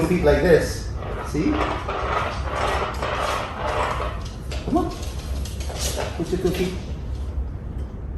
feet like this. See? Come on. Push your cookie.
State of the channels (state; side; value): identical; both; correlation 1.00